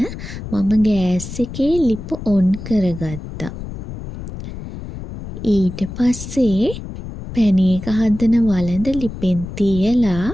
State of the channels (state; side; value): noise; left; rumble, 10 dB below the sound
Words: මම ගෑස් එකේ ලිප ඔන් කරගත්තා. ඊට පස්සේ පැණි එක හදන වළඳ ලිපෙන් තියලා